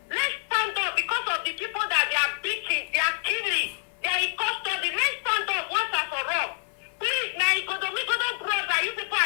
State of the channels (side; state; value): right; silent; 60 dB below the other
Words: let's stand up because of the people that they are beating, they are killing, they are in custody. Let's stand up once and for all. Please, my Igbo brother, you people